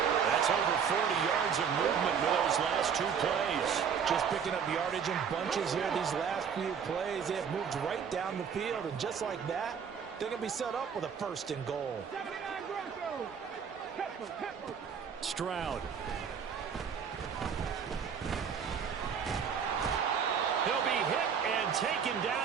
That's over 40 yards of movement with those last two plays. Just picking up yardage in bunches here these last few plays. They have moved right down the field, and just like that, they're going to be set up with a first and goal. Stroud. He'll be hit and taken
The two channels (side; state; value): left; quieter; 7.1 dB